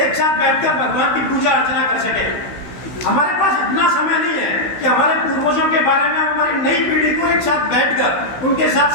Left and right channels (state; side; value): late; right; 16 ms